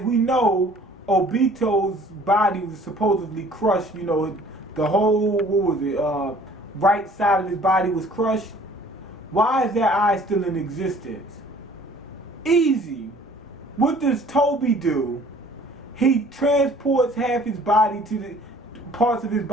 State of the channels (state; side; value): normal; both; correlation 0.53